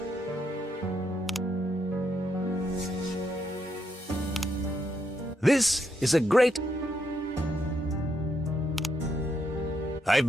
This is a great... I've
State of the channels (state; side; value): normal; both; correlation 0.78